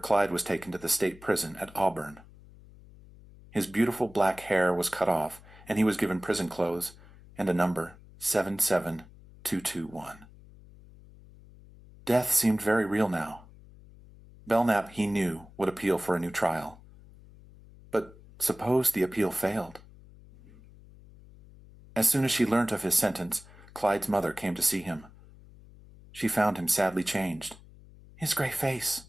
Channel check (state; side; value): noise; left; hum, 22 dB below the sound